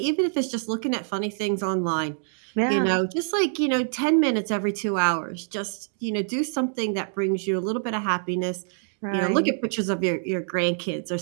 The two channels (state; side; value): silent; left; digital silence